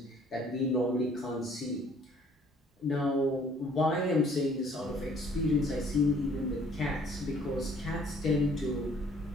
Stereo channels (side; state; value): both; normal; correlation 0.59